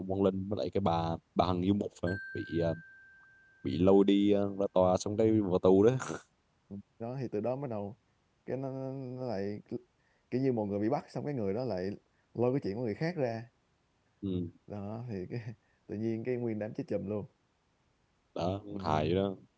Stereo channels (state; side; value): identical; both; correlation 1.00